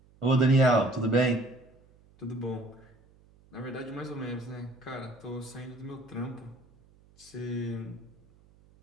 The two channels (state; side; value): noise; right; hum, 29 dB below the sound